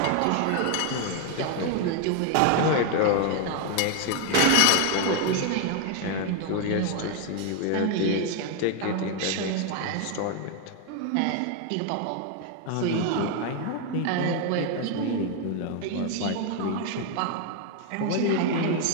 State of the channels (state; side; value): different; both; correlation 0.01